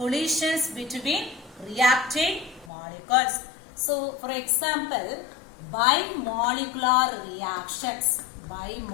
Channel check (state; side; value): drops out; right; at 2.7 s